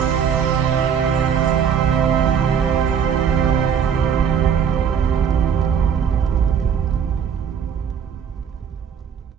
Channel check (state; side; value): quieter; left; 7.6 dB